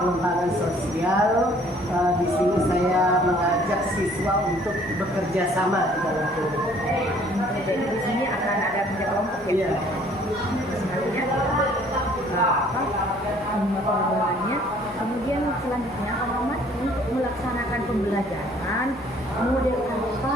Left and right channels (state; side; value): noise; left; hum, 27 dB below the sound